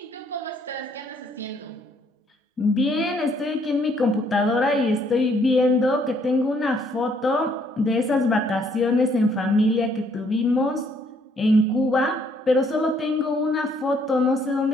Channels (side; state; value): both; normal; correlation 0.67